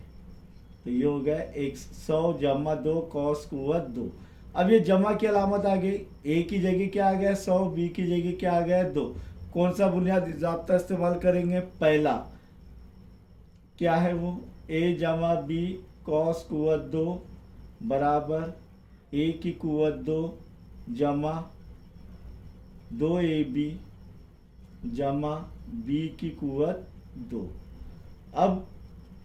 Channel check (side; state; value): both; identical; correlation 1.00